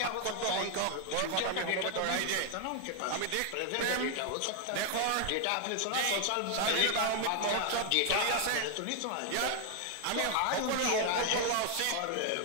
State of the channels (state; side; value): different; both; correlation 0.00